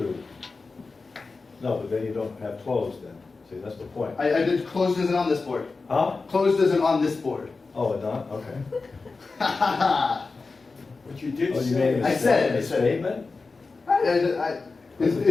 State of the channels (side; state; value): right; quieter; 4.1 dB